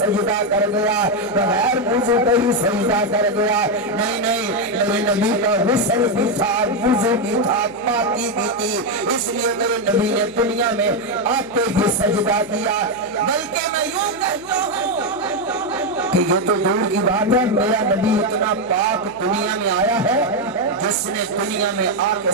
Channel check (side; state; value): left; noise; hum, 23 dB below the sound